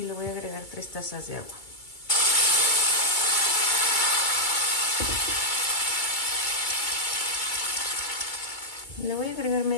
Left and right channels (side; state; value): right; late; 2.3 ms